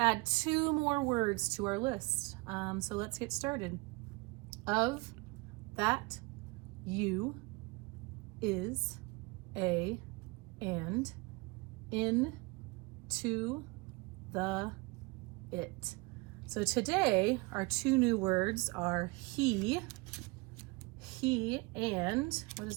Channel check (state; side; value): quieter; left; 25.4 dB